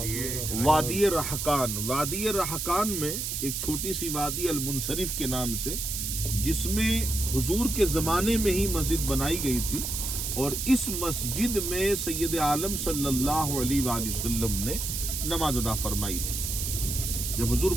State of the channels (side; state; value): right; noise; hiss, 3 dB below the sound